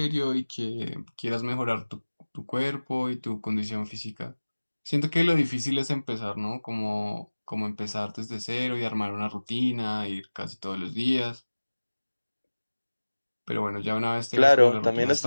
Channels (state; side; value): inverted; both; correlation -1.00